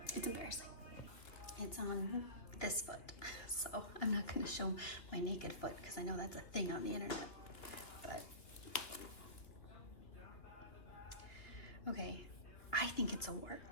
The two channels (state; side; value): late; right; 2.8 ms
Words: It's embarrassing. It's on this foot, so I'm not going to show my naked foot because I know that's a thing on the internet. But okay, I think it's a wart.